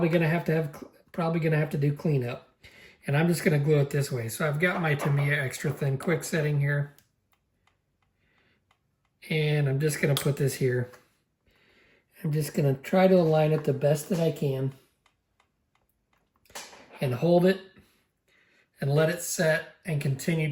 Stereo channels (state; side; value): identical; both; correlation 1.00